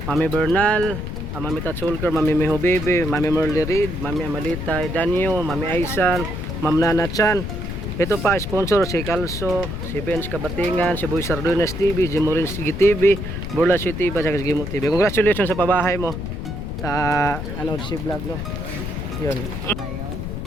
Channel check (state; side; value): noise; left; rumble, 5 dB below the sound